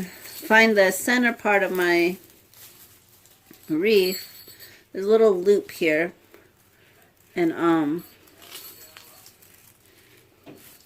the center part of my wreath. There's a little loop here, and I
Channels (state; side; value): identical; both; correlation 1.00